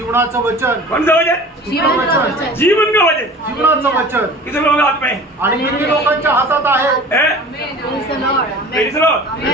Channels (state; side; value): normal; both; correlation 0.42